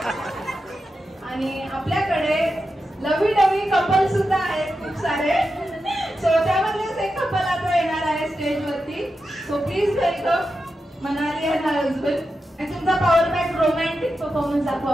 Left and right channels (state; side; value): normal; both; correlation 0.89